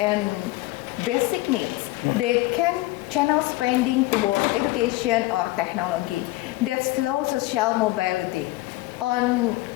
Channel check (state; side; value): quieter; right; 19.4 dB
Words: basic needs, they can channel spending toward education or technology that slows social mobility on